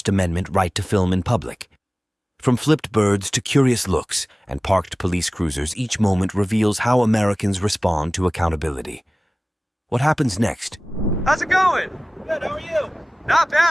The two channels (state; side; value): normal; both; correlation 0.98